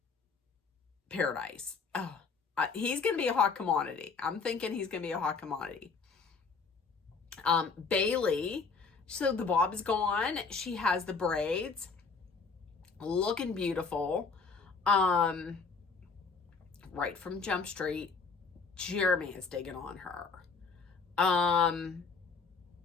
Paradise. Oh, he's going to be a hot commodity. I'm thinking he's going to be a hot commodity. Bailey, so the bob is gone. She has the braids, looking beautiful. Right from Jump Street. Jeremy is digging on her.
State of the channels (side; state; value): right; quieter; 4.8 dB